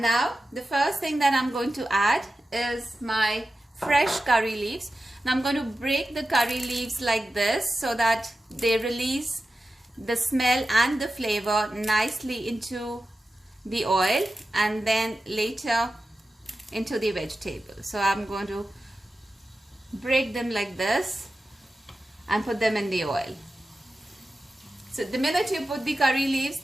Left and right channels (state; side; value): normal; both; correlation 0.93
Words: now the first thing that I'm going to add is my fresh curry leaves. Now I'm going to break the curry leaves like this so that they release the smell and the flavor nicely into the oil and then later into the vegetable. So I'm going to break them like this and put them in the oil. So the minute you put the curry leaves,